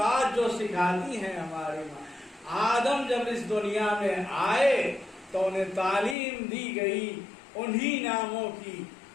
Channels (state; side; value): drops out; right; at 6.2 s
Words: جو سکھاتی ہیں ہماری ماں، آدم جب اس دنیا میں آئے تو انہیں تعلیم دی گئی انہی ناموں کی